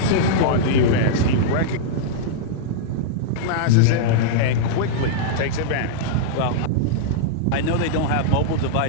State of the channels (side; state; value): both; different; correlation -0.02